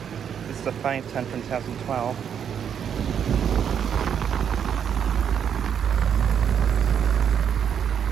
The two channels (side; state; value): left; quieter; 8.2 dB